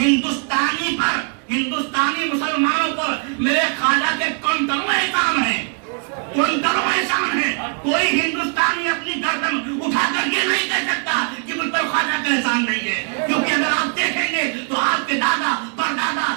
ہندوستانی مسلمانوں پر میرے خواجہ کے کنکروں احسان ہیں. کوئی ہندوستانی اپنی گردن اٹھا کر یہ نہیں کہہ سکتا کہ مجھ پر خواجہ کا احسان نہیں ہے, کیونکہ اگر آپ دیکھیں گے تو آپ کے دادا پردادا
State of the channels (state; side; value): quieter; left; 39.5 dB